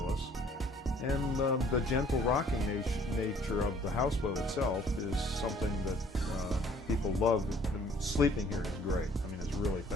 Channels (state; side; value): normal; both; correlation 0.57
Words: And the gentle rocking nature of the houseboat itself is something that people love. Sleeping here is great. I mean, it's really